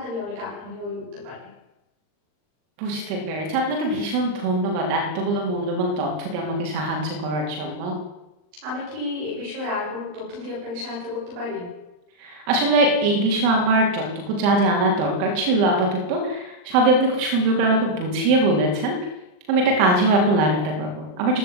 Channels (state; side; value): late; left; 39 ms